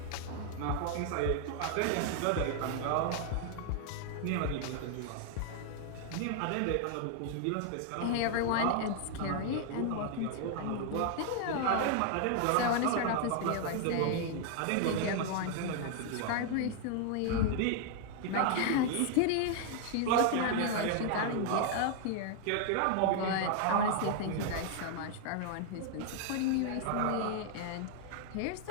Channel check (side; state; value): both; different; correlation 0.00